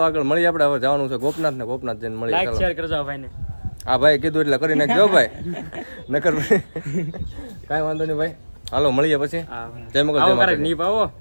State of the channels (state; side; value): inverted; both; correlation -1.00